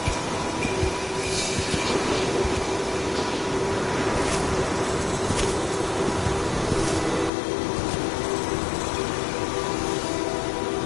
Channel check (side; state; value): right; drops out; at 7.3 s